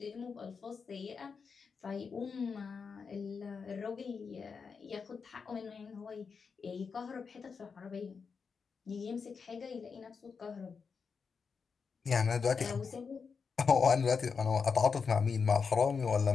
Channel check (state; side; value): quieter; right; 5.5 dB